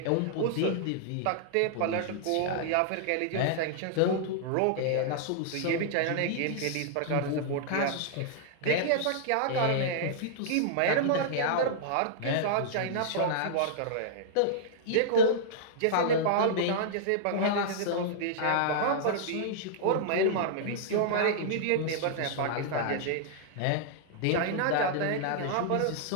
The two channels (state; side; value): different; both; correlation -0.01